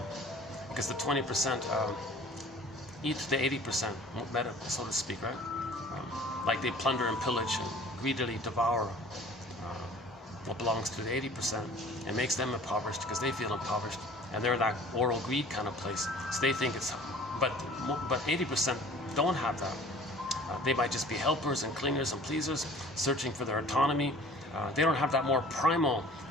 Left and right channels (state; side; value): normal; both; correlation 0.48